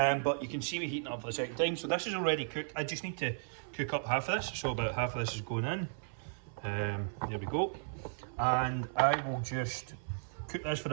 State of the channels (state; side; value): silent; left; 54 dB below the other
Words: you can see me heating up for the second time. So this is already cooked. I just need to cook up half of this. So about half of this is going in. There we go. And I will just cook this for